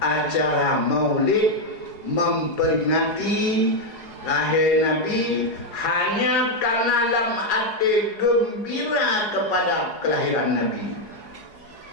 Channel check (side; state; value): right; late; 4.8 ms